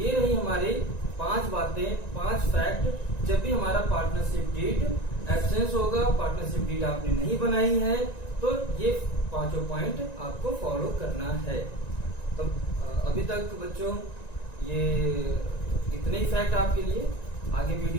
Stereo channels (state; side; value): late; right; 1.9 ms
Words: रही हमारी 5 बातें, 5 फैक्ट। जब भी हमारा पार्टनरशिप डीड एब्सेंस होगा, पार्टनरशिप डीड आपने नहीं बनाई है, तो ये 5 पॉइंट आपको फॉलो करना है। तो अभी तक बच्चों ये इतने ही फैक्ट आपके लिए। आगे